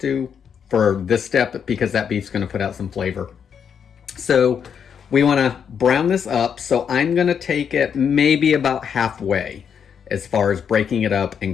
for this step because that beef's gonna put out some flavor. So we wanna brown this up. So I'm gonna take it maybe about halfway as far as breaking it up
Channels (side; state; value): right; quieter; 7.4 dB